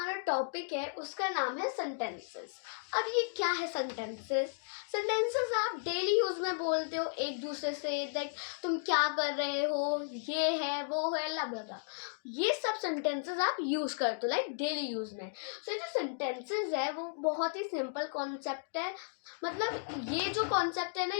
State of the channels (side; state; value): right; silent; digital silence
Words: टॉपिक है उसका नाम है सेंटेंसेस। अब ये क्या है सेंटेंसेस? सेंटेंसेस आप डेली यूज में बोलते हो एक दूसरे से, लाइक तुम क्या कर रहे हो, ये है वो है लबलबा, ये सब सेंटेंसेस आप यूज करते हो लाइक डेली यूज में। सो जो सेंटेंसेस है वो बहुत ही सिंपल कॉन्सेप्ट है। मतलब ये जो कॉन्सेप्ट है ना,